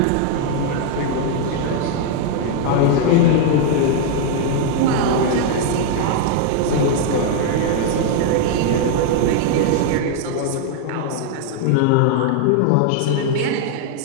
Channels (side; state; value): both; different; correlation 0.00